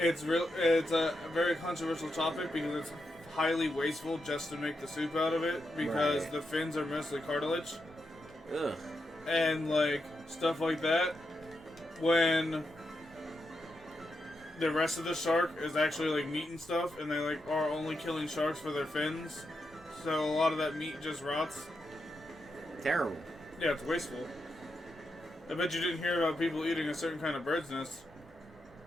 a very controversial topic because it's highly wasteful just to make the soup out of it because Right. the fins are mostly cartilage. Ugh. And, like, stuff like that. When the rest of the shark is actually, like, meat and stuff, and they, like, are only killing sharks for their fins. So a lot of that meat just rots. Terrible. Yeah, it's wasteful. I bet you didn't hear about people eating a certain kind of bird's nest.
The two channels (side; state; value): both; normal; correlation 0.85